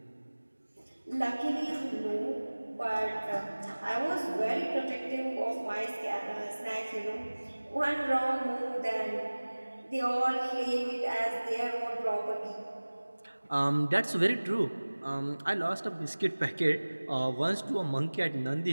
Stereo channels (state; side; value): inverted; both; correlation -1.00